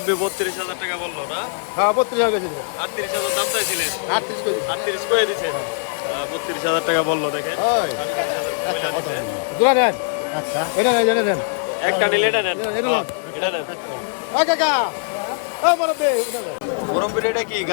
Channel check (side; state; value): right; silent; digital silence